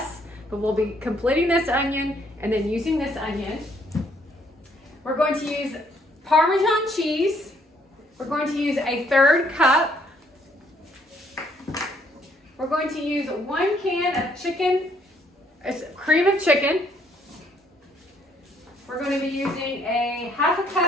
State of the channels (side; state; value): both; normal; correlation 0.67